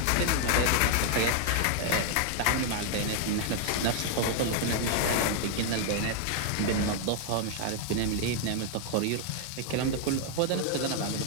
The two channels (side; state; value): both; different; correlation 0.00